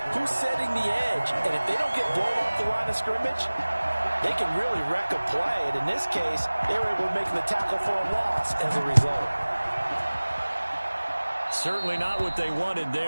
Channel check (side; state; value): both; inverted; correlation -1.00